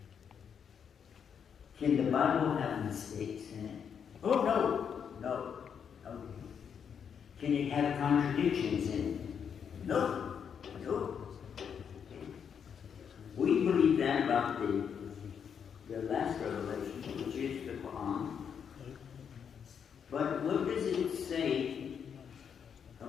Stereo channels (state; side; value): quieter; right; 7.4 dB